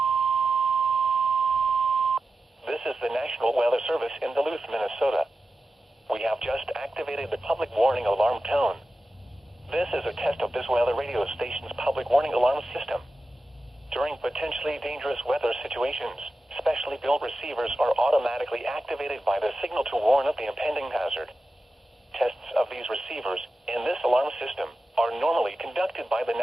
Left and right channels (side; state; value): both; normal; correlation 0.93